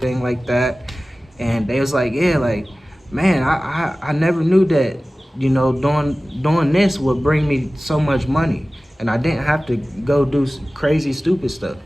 like that. And they was like, yeah, like, man, I never knew that, you know, doing this would bring me so much money, and I didn't have to go do crazy stupid stuff.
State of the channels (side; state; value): both; normal; correlation 0.97